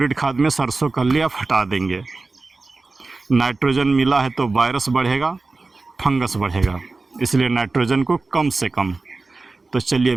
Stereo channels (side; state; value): left; quieter; 3.6 dB